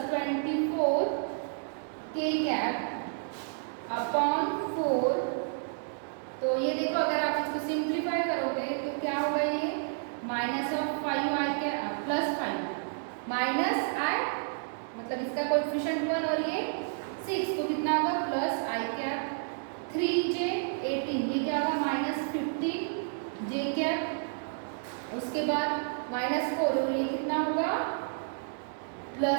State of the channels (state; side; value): silent; left; 57 dB below the other